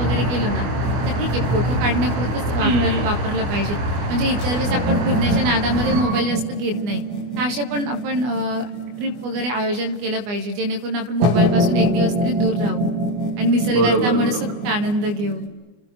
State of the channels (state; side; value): late; left; 24 ms